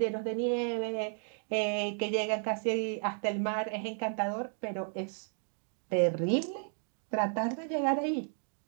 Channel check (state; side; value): silent; left; 55 dB below the other